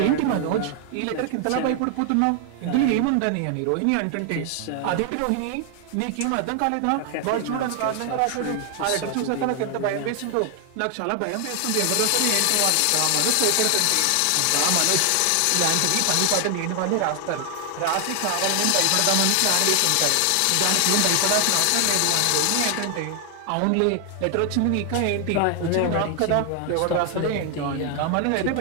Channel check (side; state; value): both; different; correlation 0.00